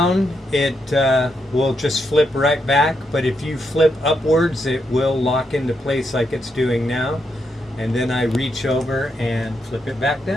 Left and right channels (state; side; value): normal; both; correlation 0.81